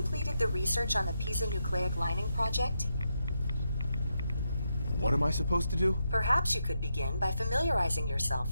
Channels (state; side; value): inverted; both; correlation -0.84